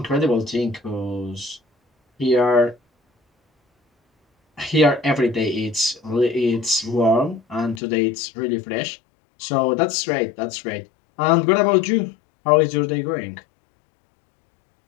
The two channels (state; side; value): drops out; right; at 7.8 s